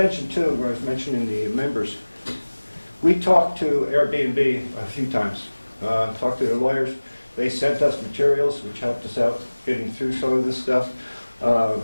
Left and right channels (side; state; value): both; inverted; correlation -1.00